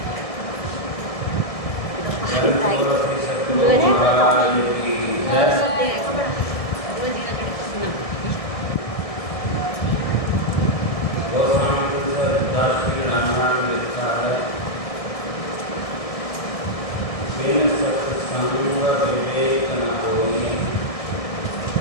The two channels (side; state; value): right; late; 1.7 ms